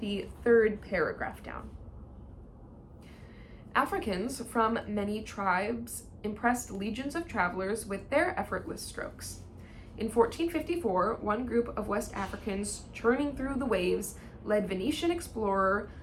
third paragraph down. Africans from many tribes impressed legions of travelers with their effortless strokes. In 1454, one group of West Africans churning through the waves led Venetian explorer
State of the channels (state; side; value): identical; both; correlation 1.00